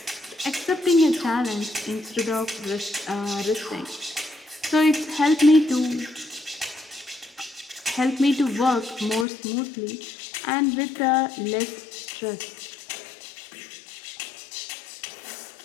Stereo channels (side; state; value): right; drops out; at 9.2 s